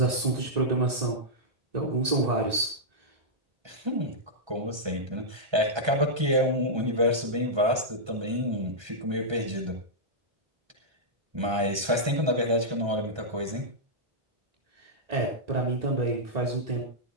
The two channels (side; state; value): left; late; 1.3 ms